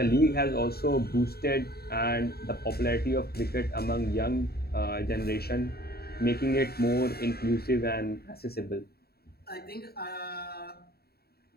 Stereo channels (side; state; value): right; late; 0.45 ms